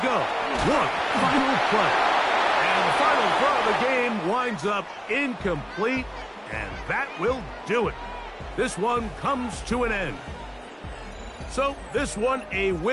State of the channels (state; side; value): identical; both; correlation 1.00